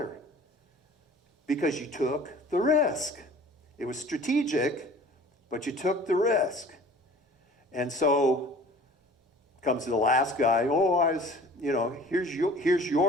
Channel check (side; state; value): both; normal; correlation 0.47